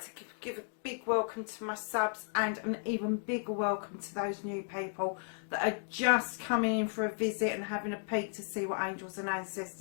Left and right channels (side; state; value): right; silent; 55 dB below the other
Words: to give a big welcome to my subs and an even bigger welcome to those new people that are just coming in for a visit and having a peek to see what Angels and